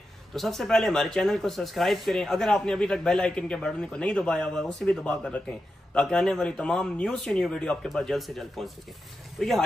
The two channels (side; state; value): both; normal; correlation 0.89